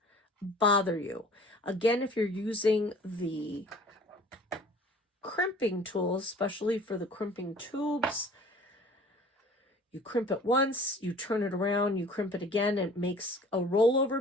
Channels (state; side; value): normal; both; correlation 0.49